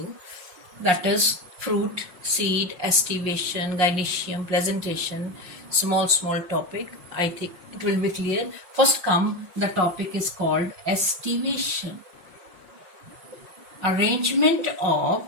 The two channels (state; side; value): late; left; 5.6 ms